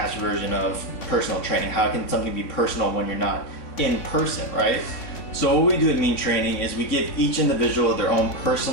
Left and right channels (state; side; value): late; right; 3.6 ms